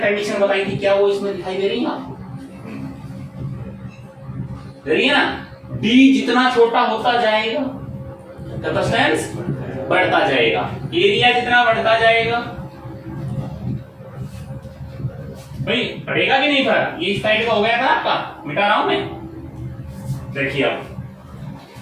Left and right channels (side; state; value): both; identical; correlation 1.00